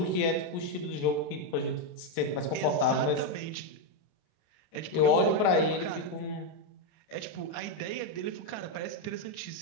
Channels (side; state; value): right; late; 30 ms